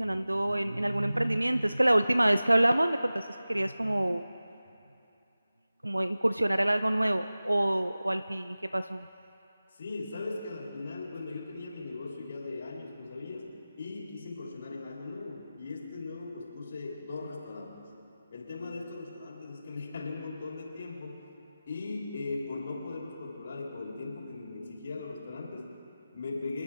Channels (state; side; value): inverted; both; correlation -0.96